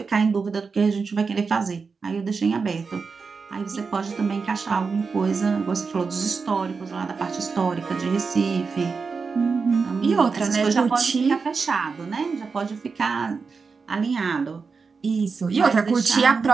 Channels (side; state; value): left; quieter; 4.9 dB